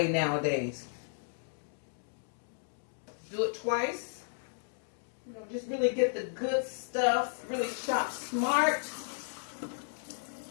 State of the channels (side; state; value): right; silent; digital silence